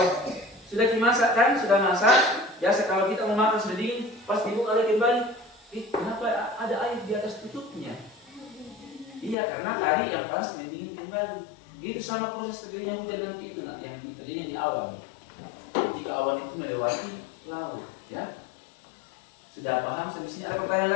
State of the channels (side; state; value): right; drops out; at 9.3 s